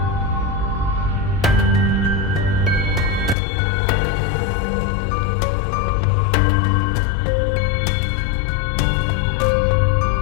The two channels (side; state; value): right; drops out; at 3.4 s